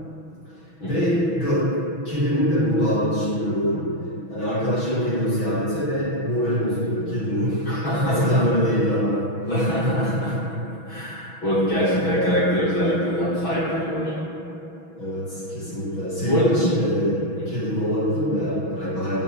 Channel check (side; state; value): right; late; 6.2 ms